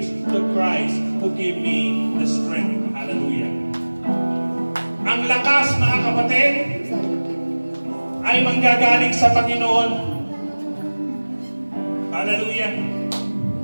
through Christ who give me the strength. Hallelujah. Ang lakas, mga kapatid, ay manggagaling sa Panginoon Hallelujah.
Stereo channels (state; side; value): inverted; both; correlation -1.00